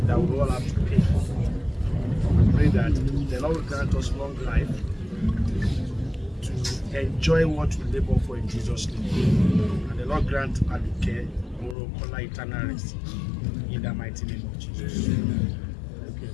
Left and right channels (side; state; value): right; drops out; at 11.8 s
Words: that we all have to pay. We pray that the Lord will grant us long life to enjoy what we labor for in Jesus' name. And the Lord grant Aduke'S Morokola eternal rest. In the mighty name of Jesus. Okay.